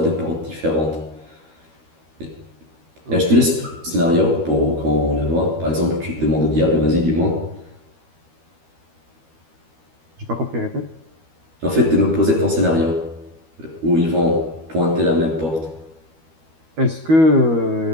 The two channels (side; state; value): left; late; 12 ms